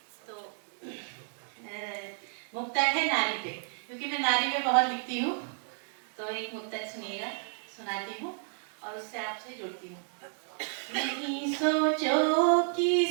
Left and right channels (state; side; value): silent; left; 57 dB below the other